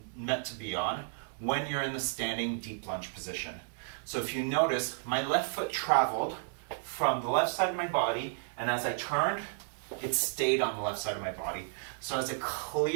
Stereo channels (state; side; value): silent; left; digital silence